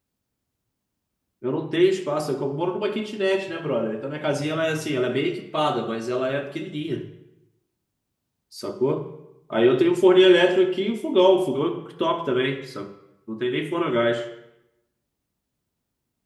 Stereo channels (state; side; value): identical; both; correlation 1.00